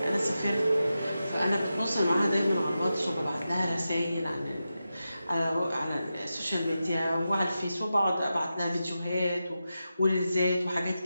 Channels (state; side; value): inverted; both; correlation -0.91